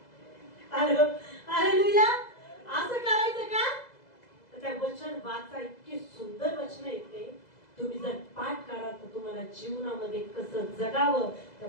हालेलुया. असं करायचं का? तर त्या वचन वाचा. इतकी सुंदर वचन येते. तुम्ही जर पाठ करा तर तुम्हाला जीवनामध्ये कसं जगावं त्या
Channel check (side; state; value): right; late; 2.0 ms